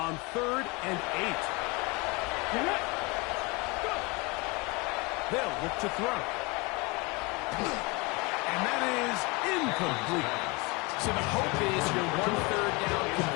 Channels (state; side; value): quieter; right; 27.1 dB